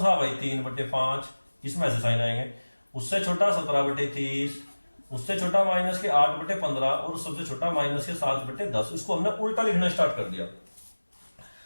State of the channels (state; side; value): inverted; both; correlation -1.00